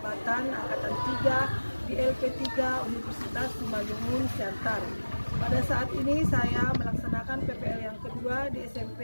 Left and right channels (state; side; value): inverted; both; correlation -1.00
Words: Angkatan 3 di LP3 Universitas Simalungun, Siantar. Pada saat ini saya melaksanakan PPL yang kedua di